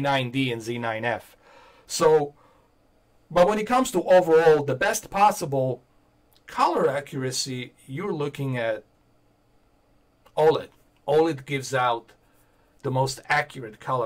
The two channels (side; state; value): both; identical; correlation 1.00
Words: and Z9F. So, but when it comes to overall the best possible color accuracy, you're looking at OLED. OLED gives out the most accurate